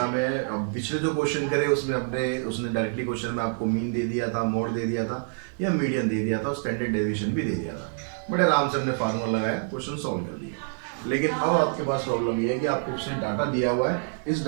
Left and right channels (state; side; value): silent; left; digital silence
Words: में अब पिछले जो क्वेश्चन करे उसमें उसने डायरेक्टली क्वेश्चन में आपको मीन दे दिया था, मोड दे दिया था या मीडियन दे दिया था, स्टैंडर्ड डेविएशन भी दे दिया था। बड़े आराम से हमने फार्मूला लगाया, क्वेश्चन सॉल्व कर दिया। लेकिन अब आपके पास प्रॉब्लम ये है कि आपको उसने डाटा दिया हुआ है, इस